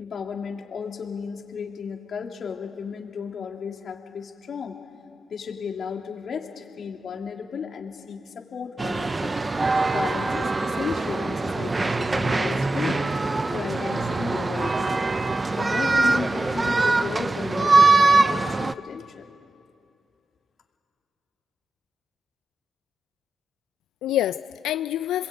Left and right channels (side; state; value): both; normal; correlation 0.90